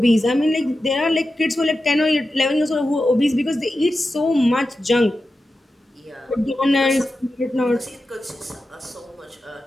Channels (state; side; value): normal; both; correlation 0.91